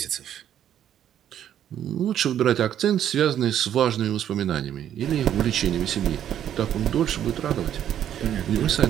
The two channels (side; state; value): left; quieter; 10.4 dB